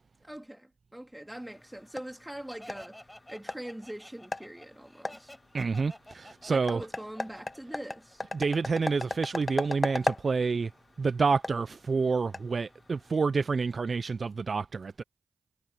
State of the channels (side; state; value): left; quieter; 3.3 dB